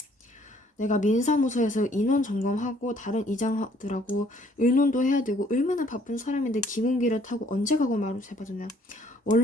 내가 민사무소에서 인원 점검하고 다른 이장들하고 의논도 해야 되고 얼마나 바쁜 사람인데 기공기를 타고 언제 가고 말을 해봐주냐.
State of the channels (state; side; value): normal; both; correlation 0.61